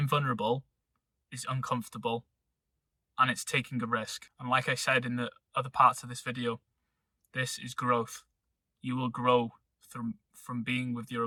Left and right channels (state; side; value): identical; both; correlation 1.00